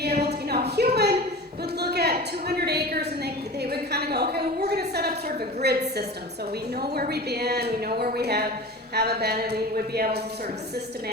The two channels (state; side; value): normal; both; correlation 0.35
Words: able to, human would look at 200 acres and they would kind of go, okay, well, we're going to set up sort of a grid system. So we know where we've been, we know where we haven't been, and we would be able to sort of